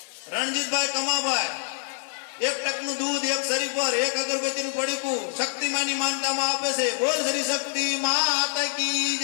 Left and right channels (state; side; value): silent; right; 57 dB below the other